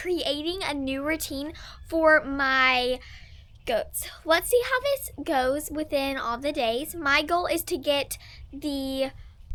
a new routine for my goats. Let's see how this goes within all the days. My goal is to get the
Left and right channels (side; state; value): both; identical; correlation 1.00